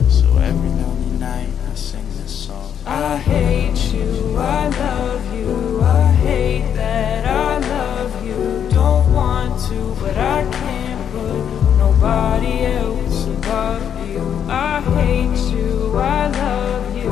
so every lonely night I sing this song. I hate you, I love you, I hate that I love you. Don't want to, but I can't put nobody else above you. I hate you, I love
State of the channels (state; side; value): quieter; right; 8.7 dB